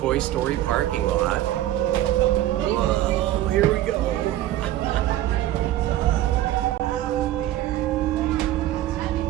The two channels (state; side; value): quieter; left; 13.9 dB